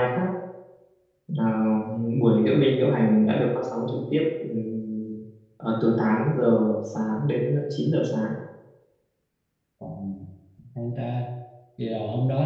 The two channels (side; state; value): both; identical; correlation 1.00